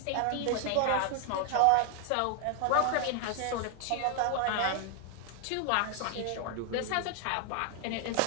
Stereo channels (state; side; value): different; both; correlation 0.00